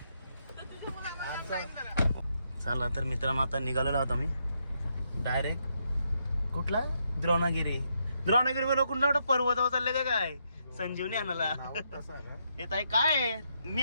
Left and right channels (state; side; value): inverted; both; correlation -0.79